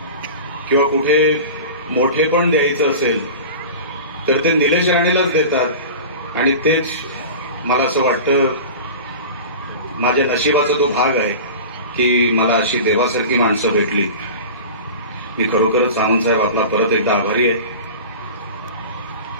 किंवा कुठे मोठे पण द्यायचं असेल तर ते निलेश राणेलाच देतात. आणि तेच मला असं वाटतं माझ्या नशिबाचा तो भाग आहे की मला अशी देवासारखी माणसं भेटली. मी खरोखरच सामंत साहेब आपला परत एकदा आभारी आहे.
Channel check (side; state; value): both; inverted; correlation -0.34